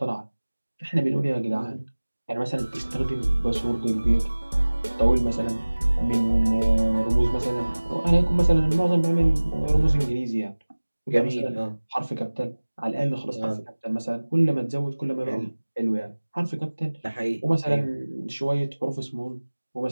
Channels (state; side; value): inverted; both; correlation -1.00